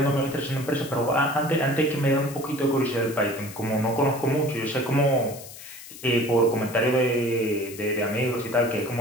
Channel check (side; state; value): left; noise; hiss, 15 dB below the sound